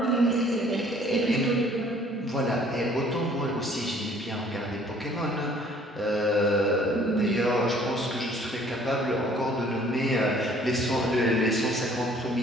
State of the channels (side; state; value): both; normal; correlation 0.57